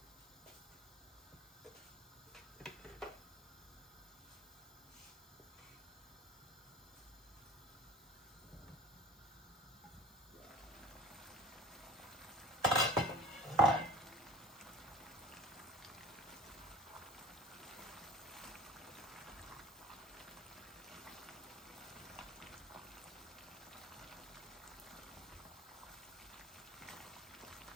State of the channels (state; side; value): normal; both; correlation 0.42